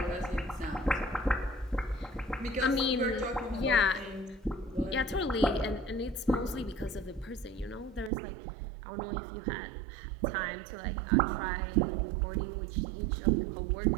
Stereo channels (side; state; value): left; drops out; at 8.1 s